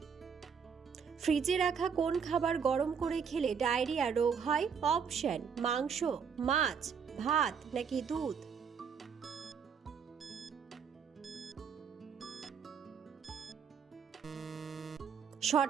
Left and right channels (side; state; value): left; quieter; 6.6 dB